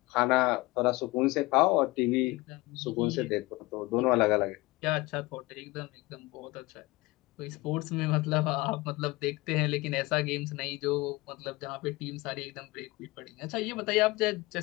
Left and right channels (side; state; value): right; quieter; 21.7 dB